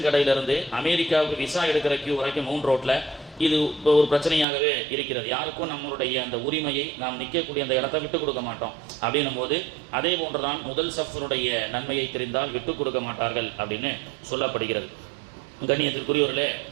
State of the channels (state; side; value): drops out; left; at 4.5 s